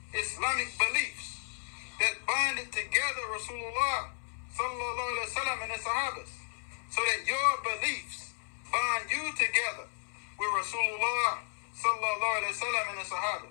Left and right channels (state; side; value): silent; right; 56 dB below the other